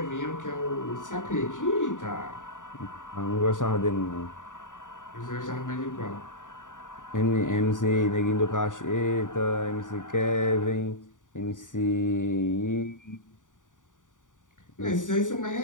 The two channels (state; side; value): late; right; 0.87 ms